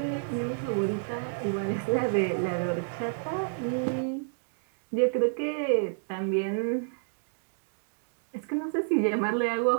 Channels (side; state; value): left; silent; digital silence